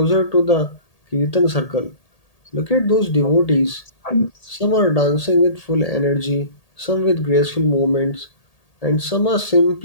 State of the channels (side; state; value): right; late; 1.8 ms